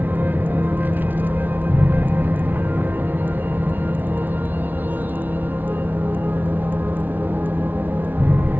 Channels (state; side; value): late; left; 0.087 ms